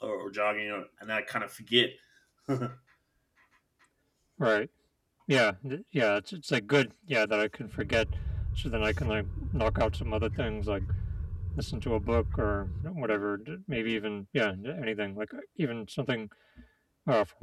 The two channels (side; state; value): both; identical; correlation 1.00